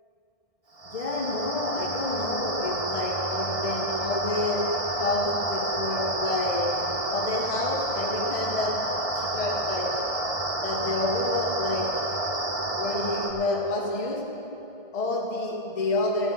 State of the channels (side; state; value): right; late; 1.6 ms